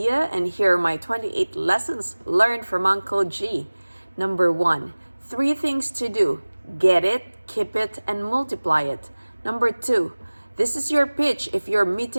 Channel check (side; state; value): both; inverted; correlation -1.00